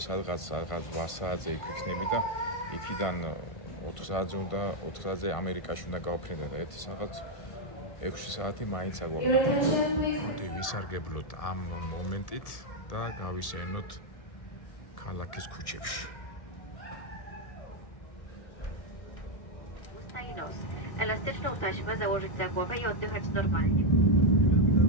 სადღაც 8 საათზე იქ ვიქნები და იქიდან 4 საათზე უნდა 4 საათზე ამერიკაში უნდა გავფრინდე და ერთი სადღაც 6 საათი მაინც აგვაქვს. მოდი ვისარგებლოთ ამ მომენტით და გავისეირნოთ ქალაქის ქუჩებში. Elastyczne taśmy założyć za głowę i oddychać normalnie.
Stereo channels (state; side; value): late; right; 1.6 ms